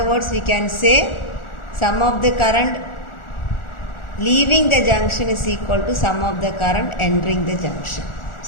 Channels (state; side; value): late; right; 1.4 ms